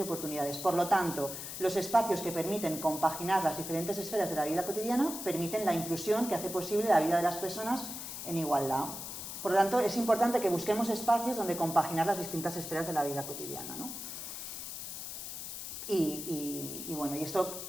oportunidades. Por lo tanto, los espacios que permiten compaginar las diferentes esferas de la vida cotidiana permiten la inclusión que hace posible la vida de las personas en igualdad. Por lo tanto, es importante que busquemos espacios donde compaginar las distintas esferas de la vida cotidiana, ¿no? Y bueno, y esto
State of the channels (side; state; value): left; noise; hiss, 7 dB below the sound